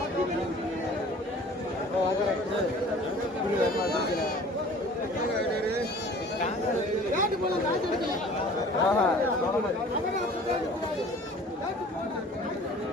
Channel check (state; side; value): normal; both; correlation 0.47